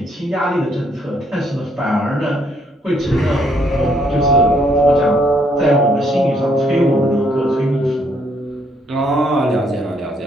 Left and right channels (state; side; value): normal; both; correlation 0.69